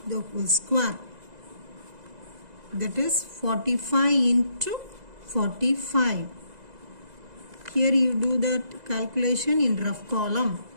the whole square. That is 45 into 45. Here you do that calculation in rough column.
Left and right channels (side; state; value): left; late; 2.0 ms